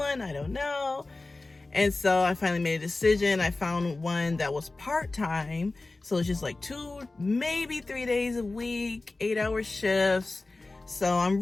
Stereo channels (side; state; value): right; quieter; 3.2 dB